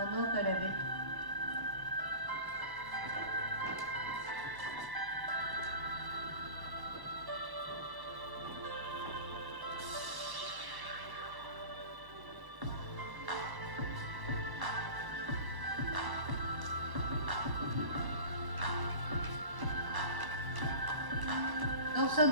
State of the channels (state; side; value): late; left; 1.1 ms